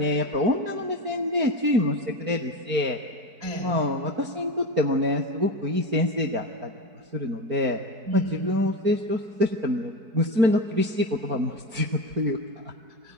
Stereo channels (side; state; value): left; late; 4.6 ms